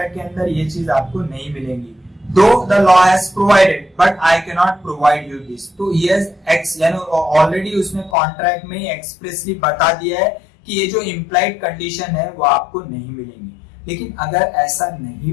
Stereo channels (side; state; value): right; drops out; at 8.2 s